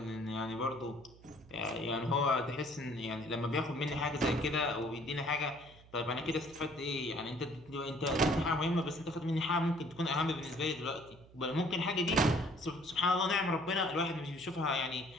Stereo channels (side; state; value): right; noise; hum, 23 dB below the sound